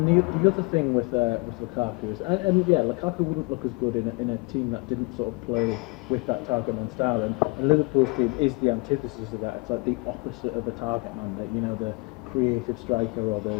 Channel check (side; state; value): right; quieter; 28.1 dB